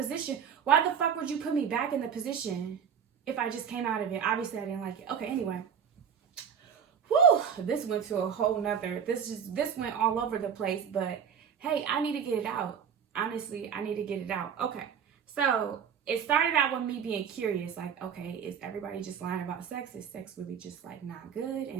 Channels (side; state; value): left; quieter; 7.6 dB